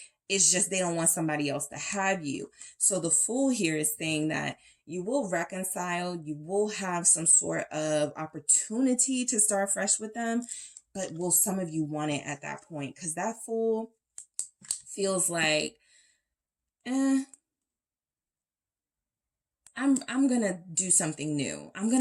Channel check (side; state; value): both; identical; correlation 1.00